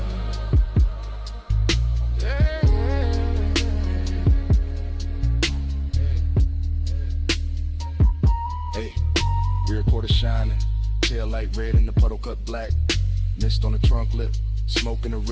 Shining, tail light red and the puddle cut black. Mist on the trunk lip, smoking the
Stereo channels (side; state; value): both; identical; correlation 1.00